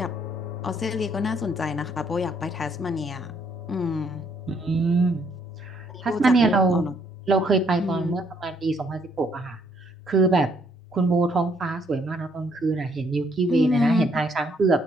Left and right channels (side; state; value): both; normal; correlation 0.69